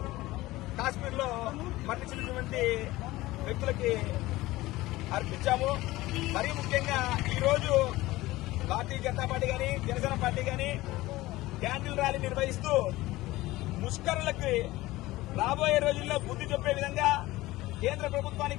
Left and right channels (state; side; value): quieter; right; 18.3 dB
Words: కాశ్మీర్ లో మరణించినటువంటి వ్యక్తులకి అర్పించాము. మరీ ముఖ్యంగా ఈరోజు భారతీయ జనతా పార్టీ గాని జనసేన పార్టీ గాని క్యాండిల్ ర్యాలీ నిర్వహిస్తూ ముష్కరులకి రాబోయే రోజుల్లో బుద్ధి చెప్పే విధంగా కేంద్ర